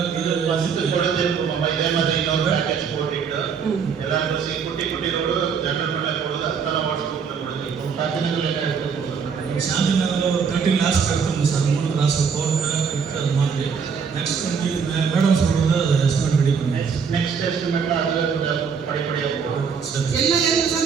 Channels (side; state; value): left; quieter; 6.2 dB